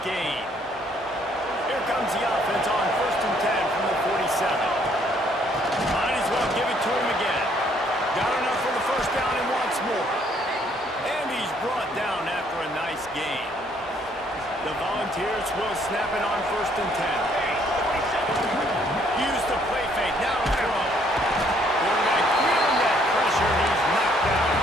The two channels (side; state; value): both; normal; correlation 0.66